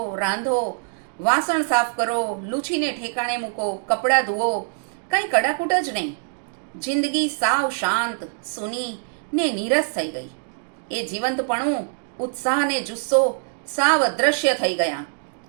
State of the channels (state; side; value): silent; left; 63 dB below the other